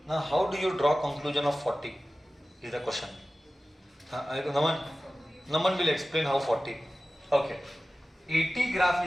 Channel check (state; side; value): normal; both; correlation 0.96